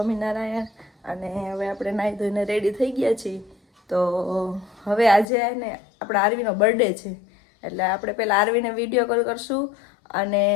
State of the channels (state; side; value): drops out; right; at 5.2 s